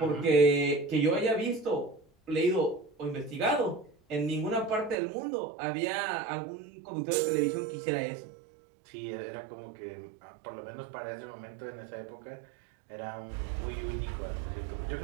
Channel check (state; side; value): drops out; left; at 5.0 s